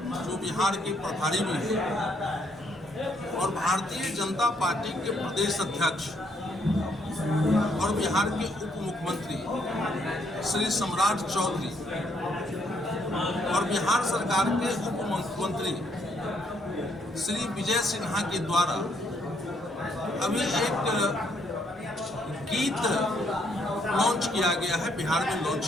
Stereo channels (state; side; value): normal; both; correlation 0.71